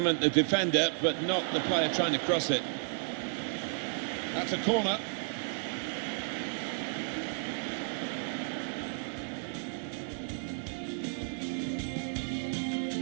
the defender, but not the player trying to cross it. That's a corner.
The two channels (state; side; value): silent; left; 56 dB below the other